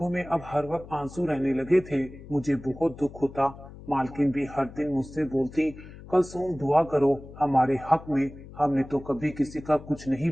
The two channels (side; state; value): left; noise; hum, 16 dB below the sound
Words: में अब हर वक्त आंसू रहने लगे थे। मुझे बहुत दुख होता। मालकिन भी हर दिन मुझसे बोलती, कलसूम दुआ करो हमारे हक में, हमने तो कभी किसी का कुछ नहीं